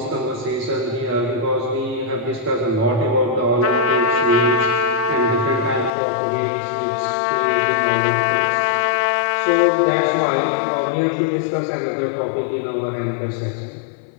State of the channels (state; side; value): drops out; right; at 5.9 s